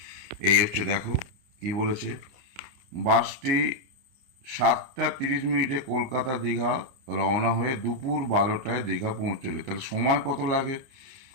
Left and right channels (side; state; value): left; late; 29 ms